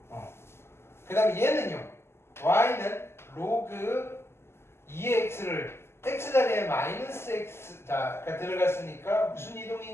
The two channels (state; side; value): late; right; 0.12 ms